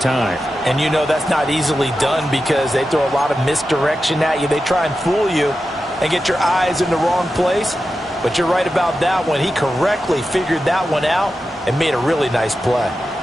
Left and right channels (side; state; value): both; normal; correlation 0.91